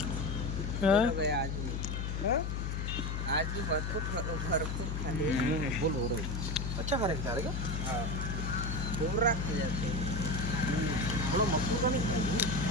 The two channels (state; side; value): noise; left; hum, 2 dB below the sound